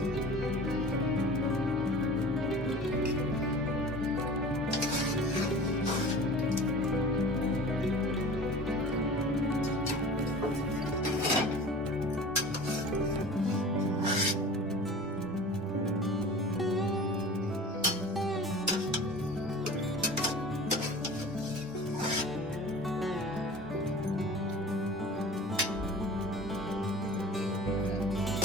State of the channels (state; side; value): normal; both; correlation 0.40